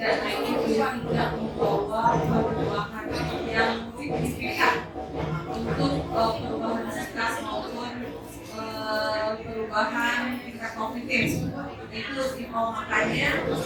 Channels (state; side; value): identical; both; correlation 1.00